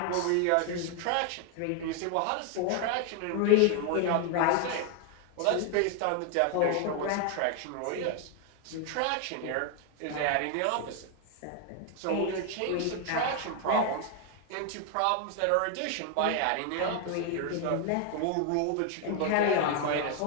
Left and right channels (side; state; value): both; different; correlation 0.01